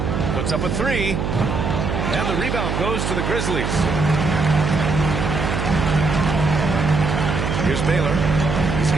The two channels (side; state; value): right; noise; hum, 1 dB below the sound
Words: Puts up a 3. And the rebound goes to the Grizzlies. Here's Baylor. He's